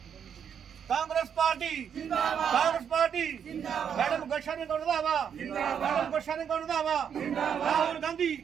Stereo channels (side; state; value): left; quieter; 7.9 dB